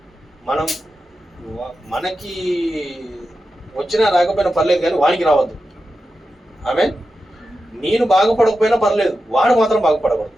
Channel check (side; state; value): both; normal; correlation 0.90